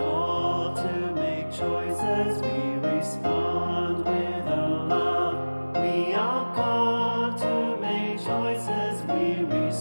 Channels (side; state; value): both; inverted; correlation -1.00